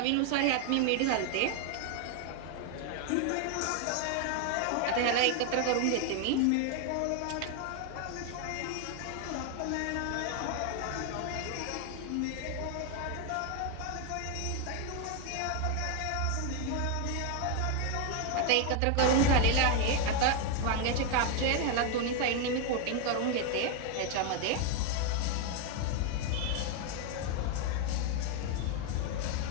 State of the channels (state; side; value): different; both; correlation 0.01